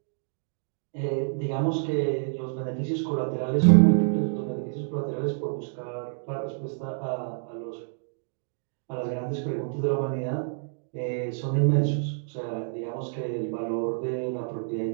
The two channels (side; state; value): left; silent; digital silence